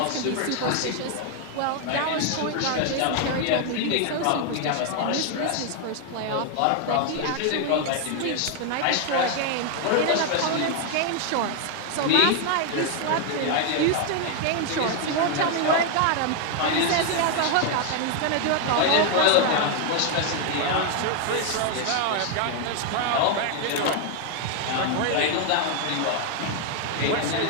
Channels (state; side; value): different; both; correlation 0.00